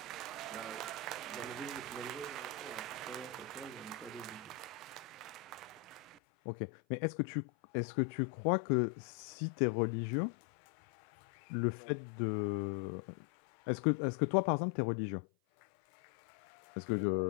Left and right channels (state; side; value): drops out; right; at 6.2 s